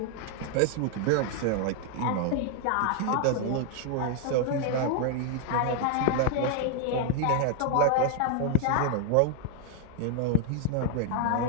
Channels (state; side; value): different; both; correlation 0.00